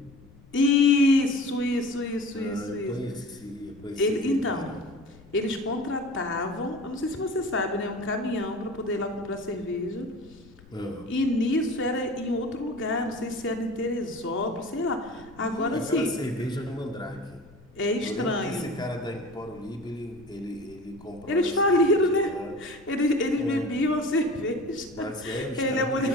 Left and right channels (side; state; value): left; noise; rumble, 23 dB below the sound